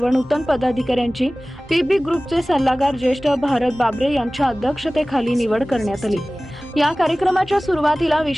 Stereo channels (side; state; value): both; normal; correlation 0.98